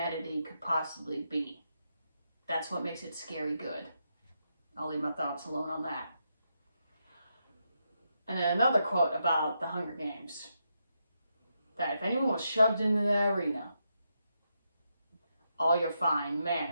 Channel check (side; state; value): both; inverted; correlation -0.83